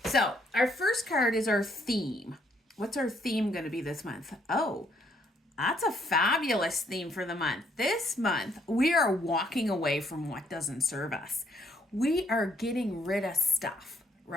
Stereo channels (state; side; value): normal; both; correlation 0.69